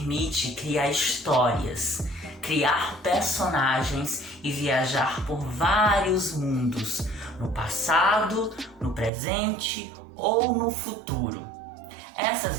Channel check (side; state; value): left; drops out; at 9.1 s